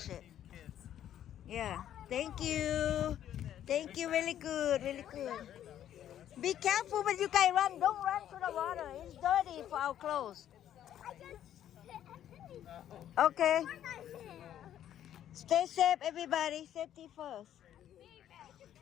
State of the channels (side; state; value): right; quieter; 10.9 dB